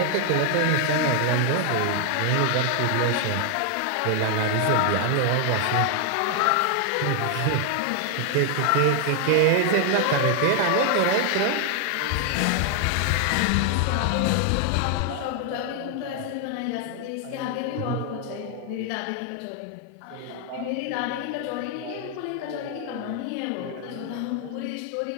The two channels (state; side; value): different; both; correlation 0.00